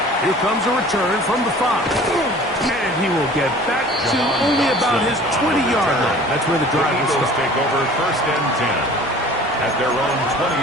Here comes a return from the 5. And he will get back to only about his 20-yard line. That's where the drive will Eagles start. take over first and 10 at their own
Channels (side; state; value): both; normal; correlation 0.46